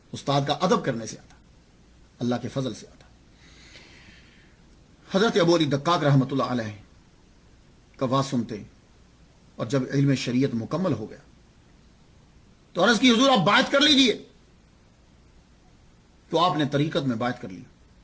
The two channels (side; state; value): both; identical; correlation 1.00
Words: استاد کا ادب کرنے سے آتا, اللہ کے فضل سے آتا. حضرت ابو علی دقاق رحمۃ اللہ علیہ کا واز سنتے, اور جب علم شریعت مکمل ہو گیا تو عرض کی حضور آپ بات کر لیجئے. تو آپ نے طریقت میں بات کر لی.